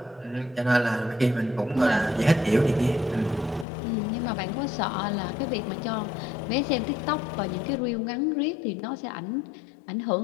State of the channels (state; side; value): drops out; right; at 3.7 s